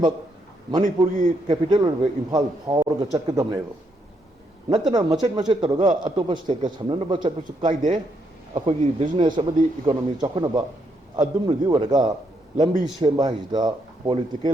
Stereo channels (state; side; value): normal; both; correlation 0.76